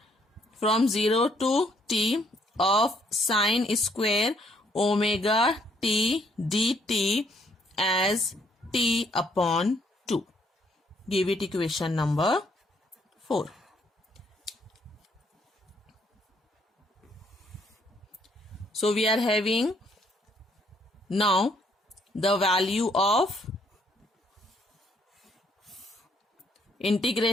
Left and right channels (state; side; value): normal; both; correlation 0.69